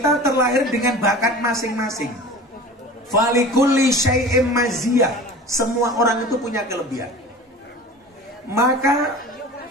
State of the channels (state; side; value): normal; both; correlation 0.38